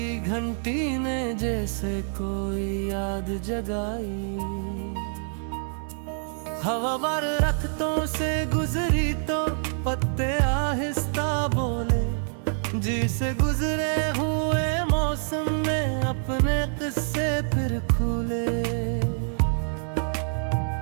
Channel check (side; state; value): left; silent; 61 dB below the other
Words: घंटी ने जैसे कोई याद जगाई। हवा बार रख्तों से गुजरी तो पत्ते आहिस्ता बोले, जिसे गुजरे हुए मौसम में अपने किस्से फिर खुले।